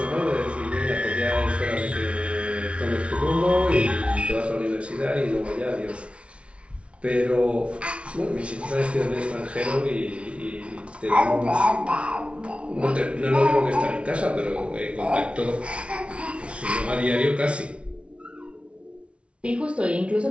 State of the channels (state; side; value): late; left; 0.060 ms